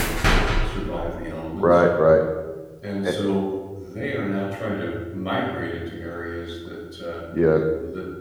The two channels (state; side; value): identical; both; correlation 1.00